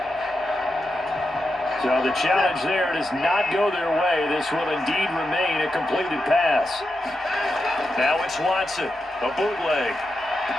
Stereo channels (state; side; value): normal; both; correlation 0.88